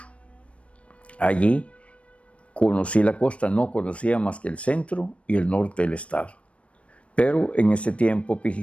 Allí conocí la costa, no conocía más que el centro y el norte del estado. Pero en ese tiempo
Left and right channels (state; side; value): late; right; 0.062 ms